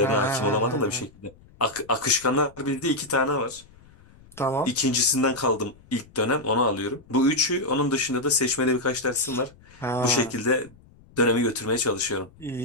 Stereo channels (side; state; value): left; noise; rumble, 25 dB below the sound